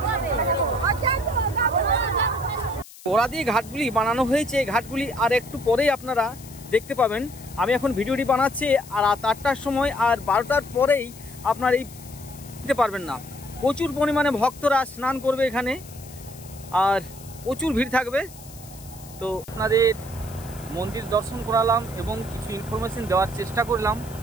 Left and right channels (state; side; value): noise; left; hiss, 19 dB below the sound